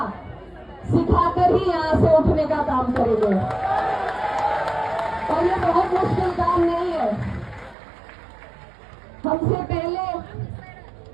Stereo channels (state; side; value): drops out; left; at 7.8 s